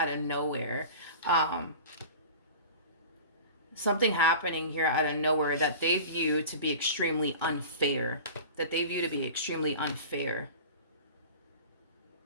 of nowhere. Something happening here out of nowhere that they view to be extremely unfair.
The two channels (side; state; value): both; inverted; correlation -0.37